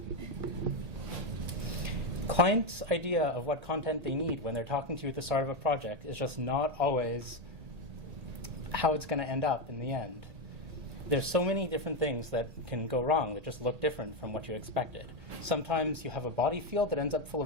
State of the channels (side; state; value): left; late; 1.9 ms